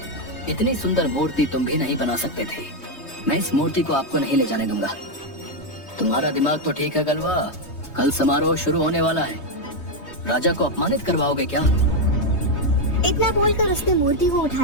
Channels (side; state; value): right; late; 3.2 ms